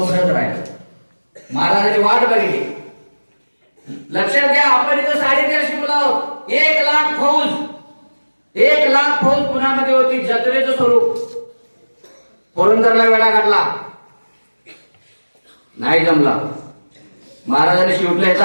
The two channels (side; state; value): both; inverted; correlation -1.00